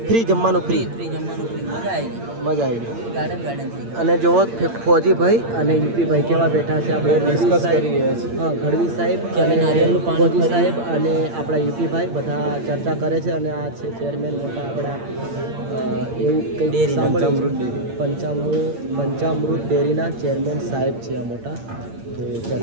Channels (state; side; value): late; left; 8.7 ms